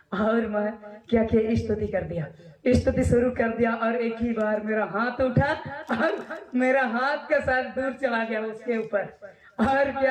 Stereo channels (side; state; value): both; identical; correlation 1.00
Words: और मैं क्या किया, स्तुति कर दिया, स्तुति शुरू कर दिया और एक ही बार मेरा हाथ उठा और मेरा हाथ का साथ दूर चला गया उसके ऊपर। और